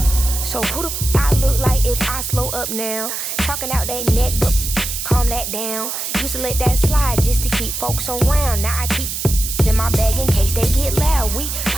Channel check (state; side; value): noise; right; hiss, 4 dB below the sound